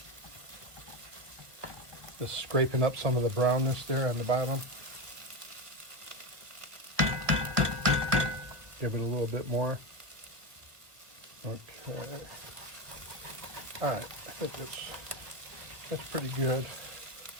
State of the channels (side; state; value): left; late; 1.2 ms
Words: Just scraping up some of the brownness there on the bottom. Give it a little bit more. Okay. All right, I think that's pretty good.